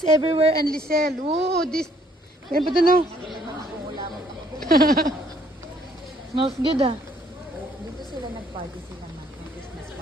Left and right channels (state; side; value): normal; both; correlation 0.64